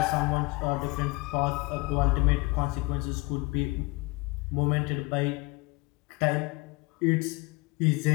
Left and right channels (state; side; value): quieter; right; 24.4 dB